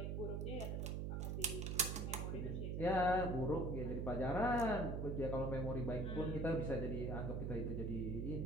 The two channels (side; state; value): right; noise; hum, 1 dB below the sound